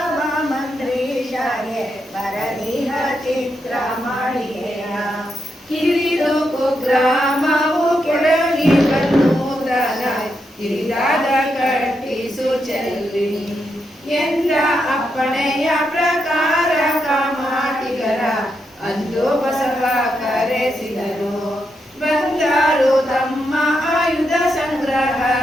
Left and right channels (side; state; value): both; normal; correlation 0.83